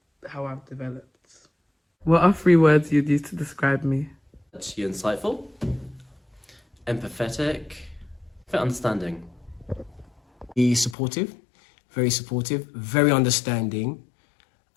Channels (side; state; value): right; drops out; at 11.0 s